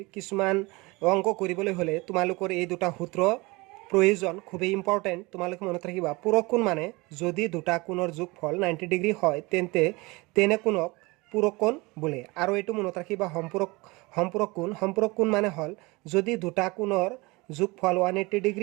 কিছুমান অংক কৰিবলৈ হ'লে তোমালোকৰ এই দুটা সূত্ৰ প্ৰয়োজন, খুবেই ইম্পৰ্টেণ্ট। তোমালোকে মনত ৰাখিবা, পূৰক কোণ মানে যদি দুটা কোণৰ যোগফল 90 ডিগ্ৰী হয় তেন্তে তেনে কোণক পূৰক কোণ বোলে। আৰু এইটো মনত ৰাখিবা, সম্পূৰক কোণ মানে হ'ল যদি দুটা কোণৰ যোগফল 180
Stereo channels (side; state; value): left; quieter; 24.1 dB